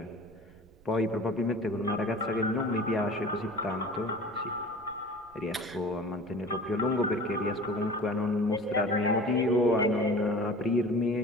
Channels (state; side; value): noise; right; rumble, 26 dB below the sound